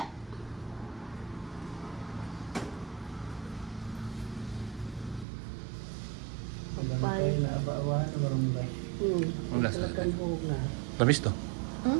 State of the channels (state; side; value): drops out; left; at 5.2 s